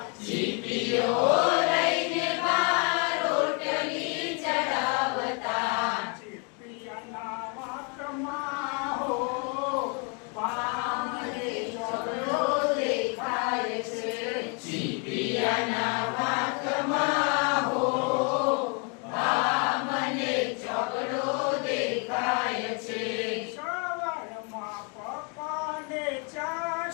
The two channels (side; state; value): right; quieter; 36.5 dB